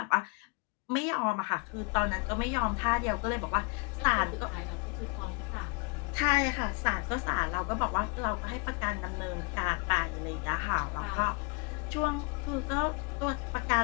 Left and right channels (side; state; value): right; quieter; 30.9 dB